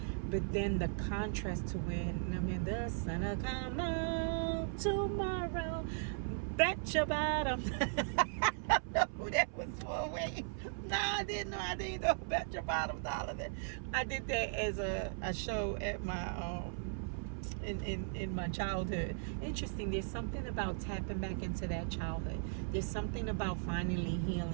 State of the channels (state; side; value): silent; left; 53 dB below the other